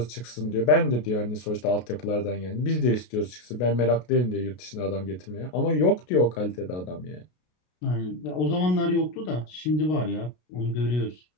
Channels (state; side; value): late; right; 33 ms